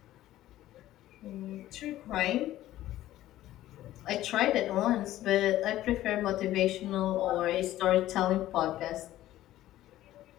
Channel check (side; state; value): right; quieter; 14.4 dB